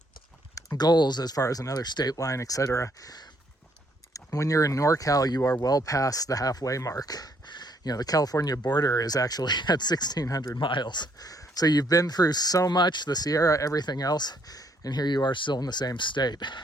goals as far as another state line, etc. When you're in NorCal, you are well past the halfway mark. The California border is actually at 1,600 miles. So you've been through so much, the Sierra, everything else, and here you are still in the same state.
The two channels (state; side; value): normal; both; correlation 0.69